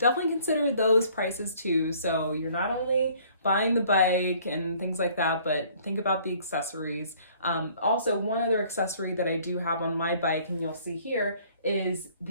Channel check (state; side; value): inverted; both; correlation -0.57